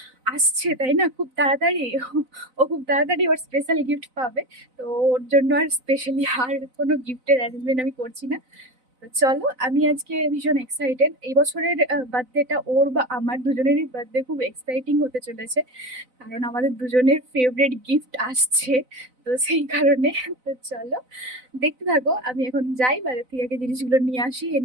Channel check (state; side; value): late; left; 4.0 ms